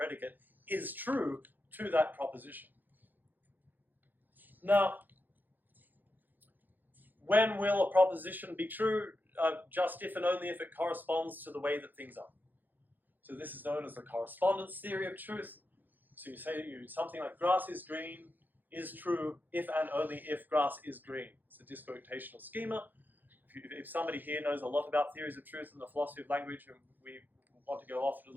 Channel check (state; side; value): late; left; 0.087 ms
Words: is true to that proposition. Now, when will a proposition be true? Just if and only if it corresponds to the way that things are. So this is known as the correspondence theory of truth. So you say something like grass is green is true if and only if grass is green. It's a disquotational schema. If somebody here knows a lot about theories of truth and the philosophy of language, and we want to go off